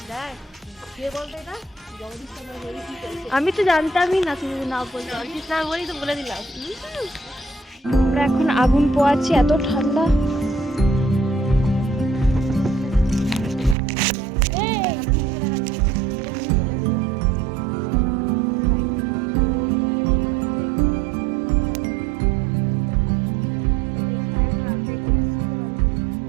দেখ, কে বলতো এটা? জগদীশ চন্দ্র বসু কি করেছে? আমি তো জানতামই না, তুমি না বলতে। জগদীশ না বলেই তো বলে দিলাম। আমরা এখন আগুন পোয়াচ্ছি, এত ঠান্ডা।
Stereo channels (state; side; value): drops out; left; at 13.8 s